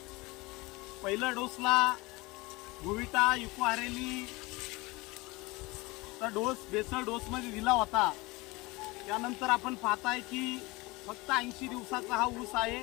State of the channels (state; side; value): quieter; right; 23.3 dB